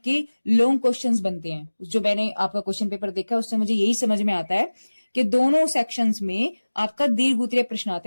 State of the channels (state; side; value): inverted; both; correlation -1.00